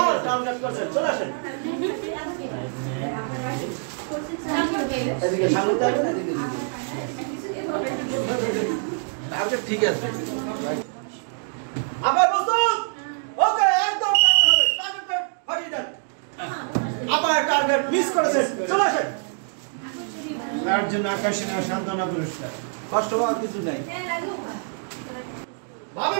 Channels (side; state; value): left; silent; 58 dB below the other